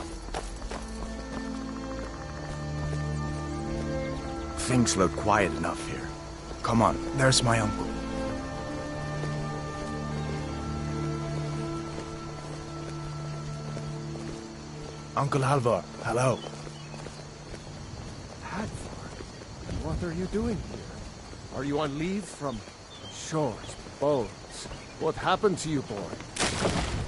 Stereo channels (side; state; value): both; identical; correlation 1.00